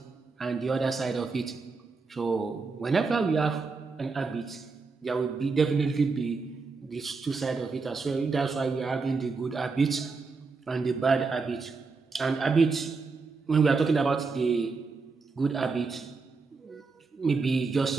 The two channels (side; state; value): left; quieter; 4.4 dB